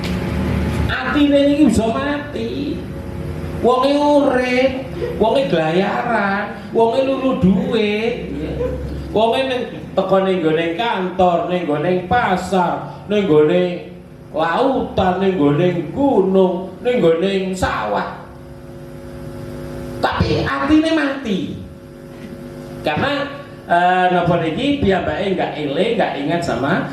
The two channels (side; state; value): both; identical; correlation 1.00